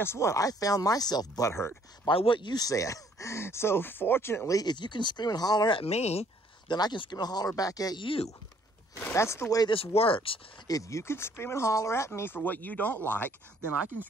what? I found myself butthurt by what you said. So fortunately, if you can scream and holler at me, then I can scream and holler back at you. That's the way this works. If you can scream and holler at me for what you don't like, then I can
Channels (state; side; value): normal; both; correlation 0.62